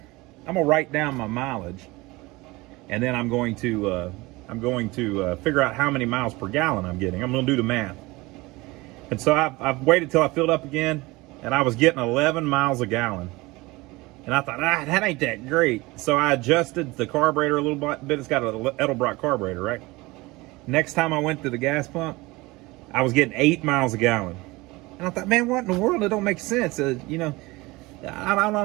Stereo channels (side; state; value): left; quieter; 22.0 dB